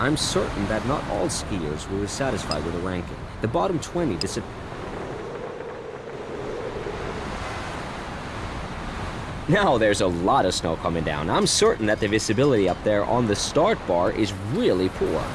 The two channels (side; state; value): both; identical; correlation 1.00